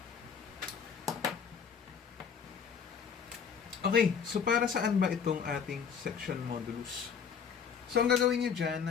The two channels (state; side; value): quieter; right; 6.9 dB